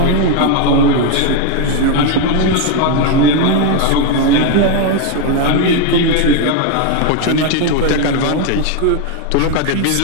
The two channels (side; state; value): both; different; correlation 0.01